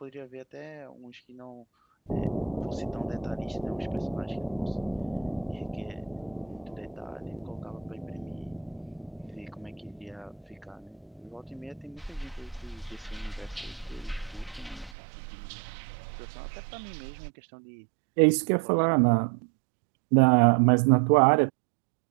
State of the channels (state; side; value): drops out; left; at 15.0 s